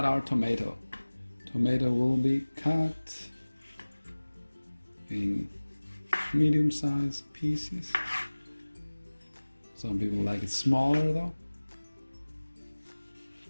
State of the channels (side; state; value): both; inverted; correlation -1.00